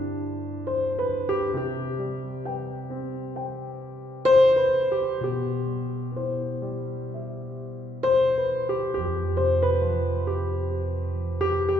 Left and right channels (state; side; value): normal; both; correlation 0.76